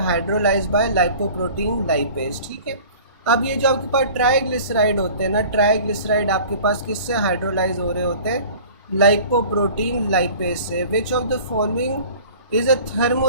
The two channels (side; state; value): both; inverted; correlation -0.45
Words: hydrolyze by lipoprotein lipase, ठीक है। अब ये जो आपके पास ट्राइग्लिसराइड होते हैं ना, ट्राइग्लिसराइड आपके पास किससे हाइड्रोलाइज हो रहे होते हैं? लाइपोप्रोटीन लाइपेज से। विच of the following is a